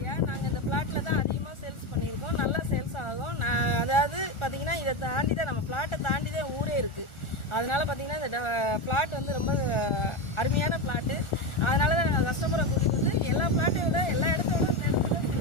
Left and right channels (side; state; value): right; late; 1.4 ms